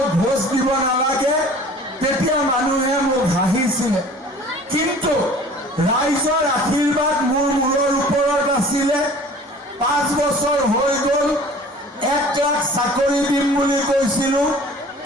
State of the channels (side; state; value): both; normal; correlation 0.47